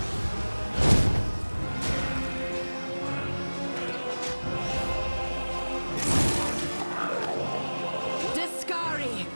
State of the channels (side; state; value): both; inverted; correlation -1.00